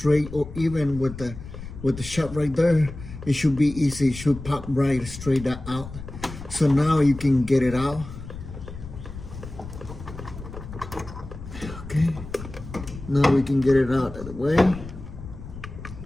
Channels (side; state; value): left; noise; rumble, 12 dB below the sound